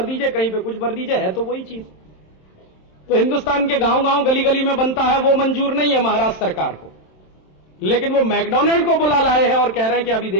दीजिए, कहीं पे कुछ भर दीजिए, है तो वही चीज। तो हिंदुस्तान के गांव गांव गली गली में बनता है, वो मंजूर नहीं है महाराष्ट्र सरकार को, लेकिन वो मैकडोनल्ड को बुला लाए हैं और कह रहे हैं कि अभी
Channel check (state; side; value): late; right; 27 ms